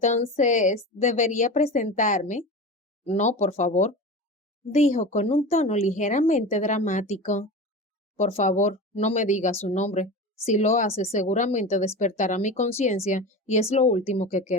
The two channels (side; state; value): both; normal; correlation 0.29